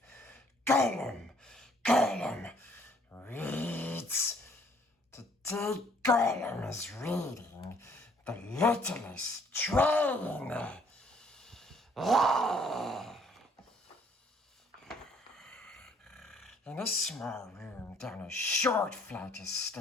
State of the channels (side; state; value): both; normal; correlation 0.63